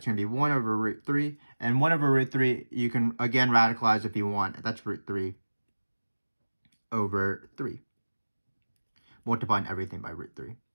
going to be 1 over root 3. And 1 over root 3, you can, again, radicalize if you want. That's root 3 over 3. Multiplying everything by root 3.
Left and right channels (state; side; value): inverted; both; correlation -1.00